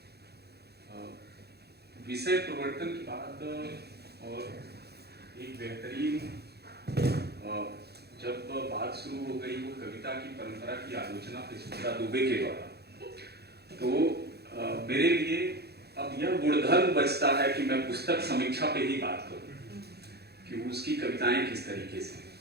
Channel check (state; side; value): late; left; 0.47 ms